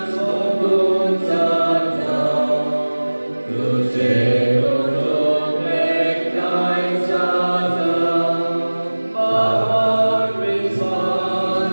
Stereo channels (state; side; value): inverted; both; correlation -1.00